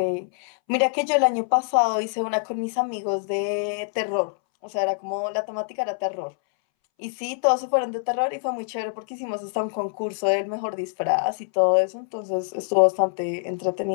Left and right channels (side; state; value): right; silent; 62 dB below the other